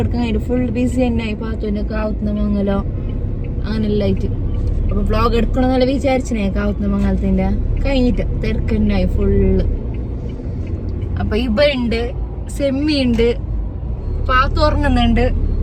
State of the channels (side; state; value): both; identical; correlation 1.00